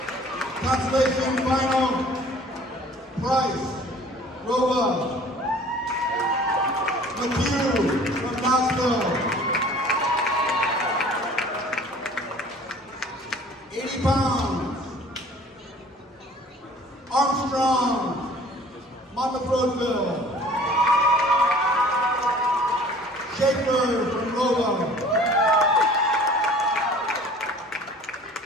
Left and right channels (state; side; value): normal; both; correlation 0.49